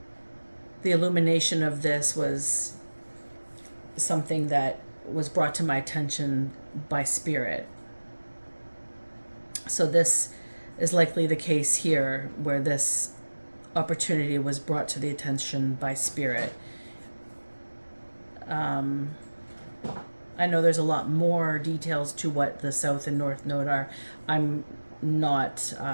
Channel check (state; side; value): inverted; both; correlation -1.00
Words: the illumination of this was something that was brought to my attention by spirit. So this is likely the case here, where this opportunity was brought to the attention by spirit. I I know there's a lot more details to what the South and North Node are. I'm not